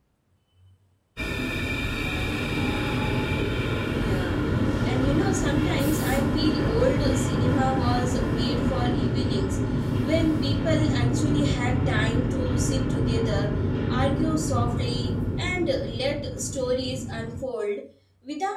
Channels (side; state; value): both; identical; correlation 1.00